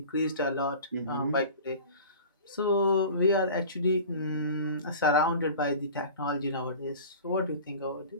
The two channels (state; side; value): inverted; both; correlation -0.39